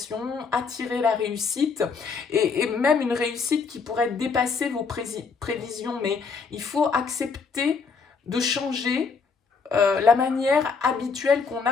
attirer la réussite, et même une réussite qui pourrait dépasser vos prévisions, mais il faut accepter de changer la manière habituelle qu'on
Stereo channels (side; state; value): right; quieter; 5.1 dB